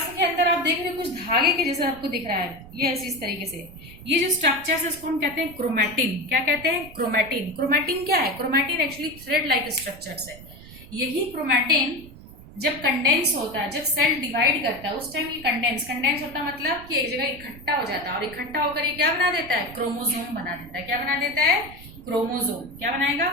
के अंदर आप देख रहे हो कुछ धागे के जैसा आपको दिख रहा है. ये ऐसी इस तरीके से ये जो स्ट्रक्चर है उसको हम कहते हैं क्रोमैटिन. क्या कहते हैं? क्रोमैटिन. क्रोमैटिन क्या है? Chromatin actually thread like structures है. यही क्रोमैटिन जब कंडेंस होता है, जब सेल डिवाइड करता है उस टाइम ये कंडेंस होता है मतलब कि एक जगह इकट्ठा हो जाता है और इकट्ठा होकर ये क्या बना देता है? क्रोमोसोम बना देता है. क्या बना देता है? क्रोमोसोम. क्या बनाएगा?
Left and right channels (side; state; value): right; noise; rumble, 18 dB below the sound